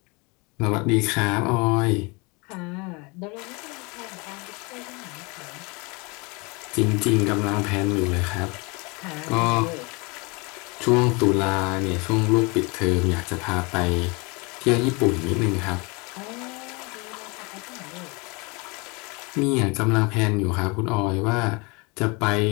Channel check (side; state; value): right; quieter; 28.6 dB